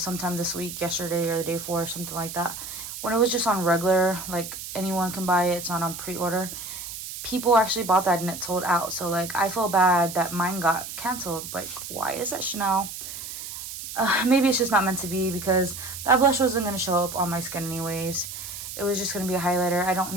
sometime this week, yesterday, or the day before, or something like that. When it was just on regular, like anyone can buy it, it's not on pre-order, people actually bought that and it sold out. So like, I feel bad that mine got canceled. Like, why is that, Chanel? Maybe it's just not meant to be, because that blush wasn't going to show up on my skin anyways. It was just going to be a highlighter. I don't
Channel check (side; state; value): right; noise; hiss, 9 dB below the sound